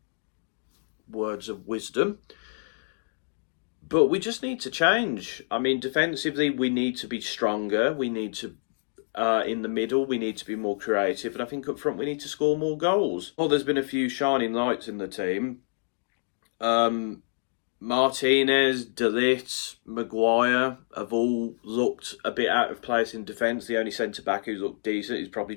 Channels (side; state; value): right; silent; 60 dB below the other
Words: words of wisdom. But we just need to change. I mean, defensively, we need to be stronger. We need to, in the middle, we need to be more creative. And I think up front, we need to score more goals. Well, there's been a few shining lights in the team. Martinez, De Ligt, Maguire have all looked a bit out of place in defence. The only centre-back who's looked decent is probably